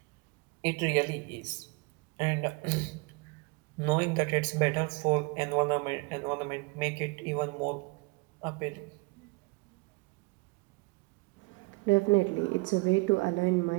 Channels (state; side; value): quieter; left; 26.0 dB